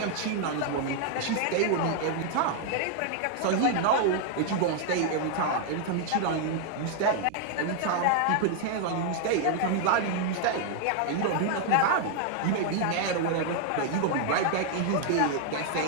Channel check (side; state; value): both; different; correlation 0.00